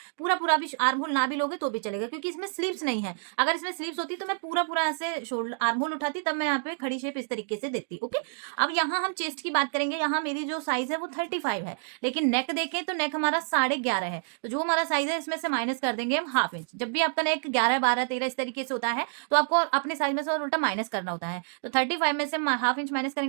पूरा पूरा भी आर्म होल ना भी लोगे तो भी चलेगा, क्योंकि इसमें स्लीव्स नहीं है। अगर इसमें स्लीव्स होती तो मैं पूरा पूरा ऐसे शोल्डर आर्म होल उठाती, तब मैं यहाँ पे खड़ी शेप इस तरीके से देती। ओके, अब यहाँ हम चेस्ट की बात करेंगे। यहाँ मेरी जो साइज है वो 35 है, लेकिन नेक देखें तो नेक हमारा 11.5 है। तो जो हमारा साइज है इसमें से माइनस कर देंगे हम हाफ इंच। जब भी आपका नेक 11, 12, 13 इस तरीके से होता है तो आपको अपने साइज में से और उल्टा माइनस करना होता है। तो 35 में से हाफ इंच माइनस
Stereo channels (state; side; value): silent; left; digital silence